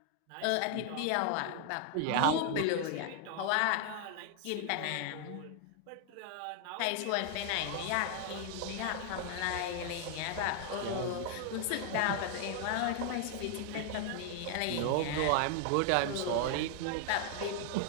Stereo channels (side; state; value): both; different; correlation 0.00